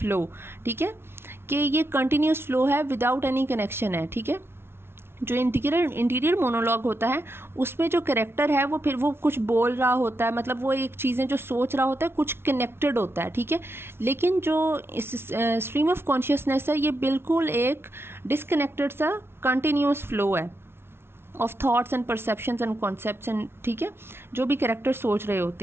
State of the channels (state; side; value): late; left; 0.12 ms